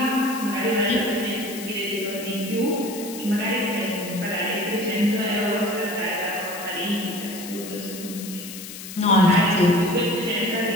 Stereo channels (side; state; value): left; noise; hiss, 11 dB below the sound